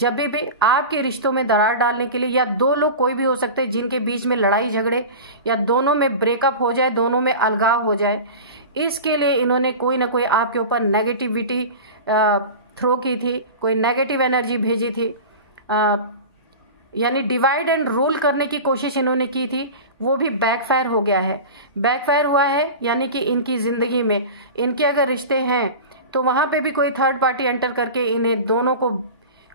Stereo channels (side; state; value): both; inverted; correlation -0.31